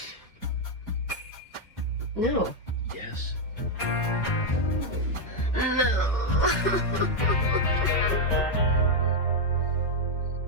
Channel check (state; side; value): normal; both; correlation 0.00